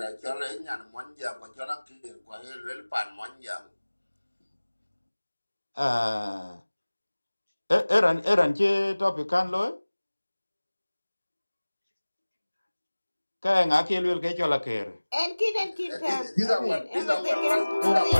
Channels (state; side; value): inverted; both; correlation -1.00